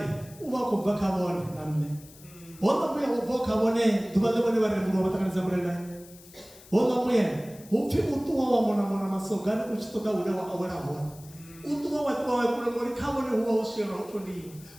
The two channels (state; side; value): noise; left; hiss, 22 dB below the sound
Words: uba kubva kabone namne wona muya ubva kabone dubale bone baremuro batakaniza Murena wona muya upfi utuwa wa mona masogana uchitoka ule wa awera hona utuwa watu wa kule muri kabone huwa ushira utoni